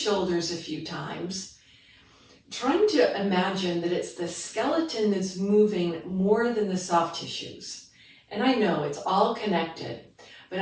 a few times, trying to imagine that it's the skeleton that's moving more than the soft tissues. And I know it's all connected, but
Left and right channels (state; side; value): identical; both; correlation 1.00